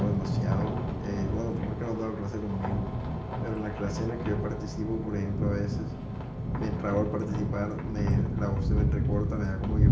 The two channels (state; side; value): identical; both; correlation 1.00